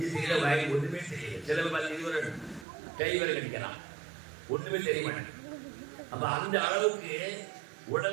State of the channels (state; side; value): drops out; left; at 2.7 s